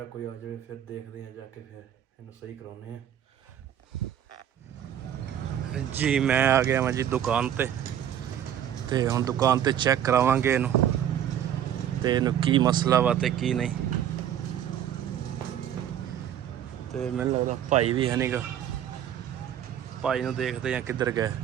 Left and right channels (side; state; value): left; quieter; 10.2 dB